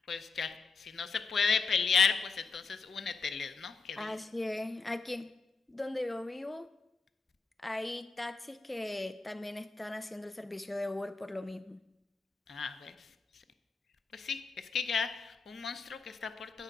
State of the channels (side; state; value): right; quieter; 4.6 dB